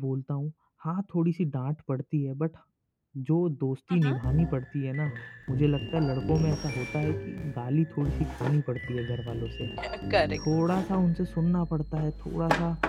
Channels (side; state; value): both; identical; correlation 1.00